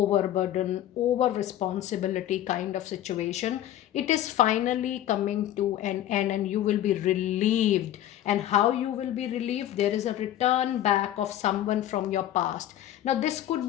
over responsibility kind of situation, it is finally coming to an end, and you will be relieved. And how you will be relieved? There is a return back of someone from your past. Now this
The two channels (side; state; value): right; quieter; 12.5 dB